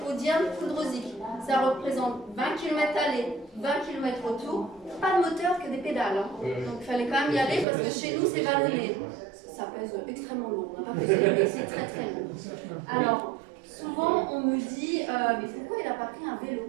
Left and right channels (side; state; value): left; drops out; at 7.7 s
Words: Poudre-Zic. Ça représente 20 km aller, 20 km retour, pas de moteur que des pédales. Hein. Donc il fallait quand même y aller parce que chez nous, c'est vallonné. Ça pèse extrêmement lourd, on n'a pas pesé, mais c'est très très lourd. Alors, souvent on me dit, mais pourquoi il n'a pas pris un